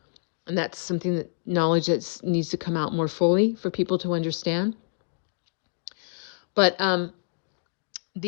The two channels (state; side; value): silent; right; digital silence